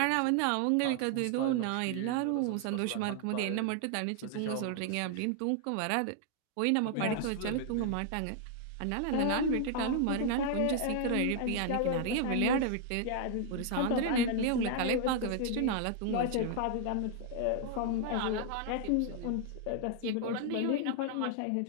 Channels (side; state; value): both; different; correlation 0.00